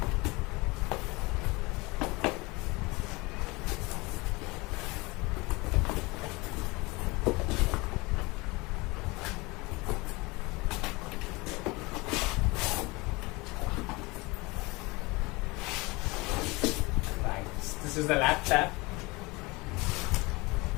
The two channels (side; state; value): right; quieter; 24.4 dB